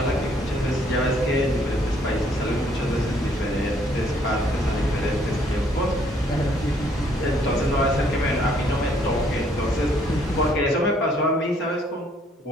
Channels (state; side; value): normal; both; correlation 0.65